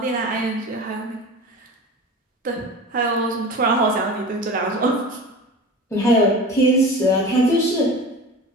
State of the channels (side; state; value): both; normal; correlation 0.34